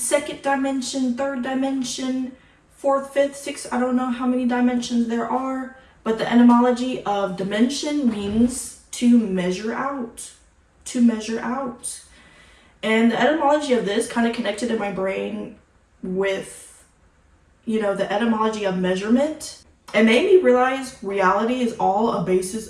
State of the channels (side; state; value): both; identical; correlation 1.00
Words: dimension, third dimension, fourth, fifth, sixth. I don't know how many dimensions there are, but the etymology of dimension means to measure out, to measure out. And the etymology of this kind of connected in my brain with, you know, the etymology of measurement. It made me realize reality is all a basis